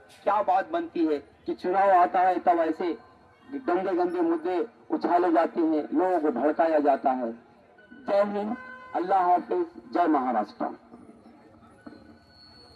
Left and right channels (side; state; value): both; identical; correlation 1.00